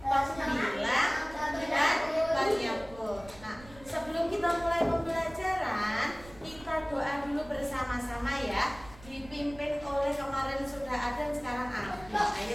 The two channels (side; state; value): right; noise; rumble, 20 dB below the sound